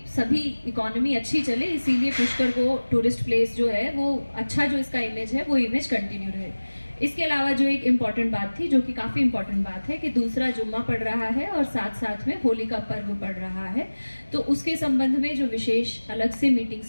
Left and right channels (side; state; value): both; inverted; correlation -1.00